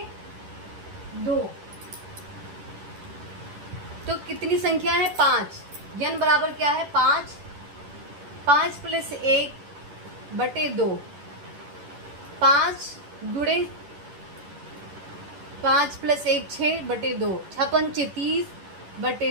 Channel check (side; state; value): left; late; 11 ms